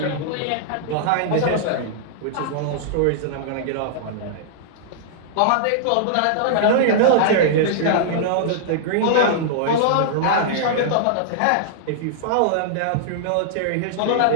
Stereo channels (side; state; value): both; different; correlation -0.01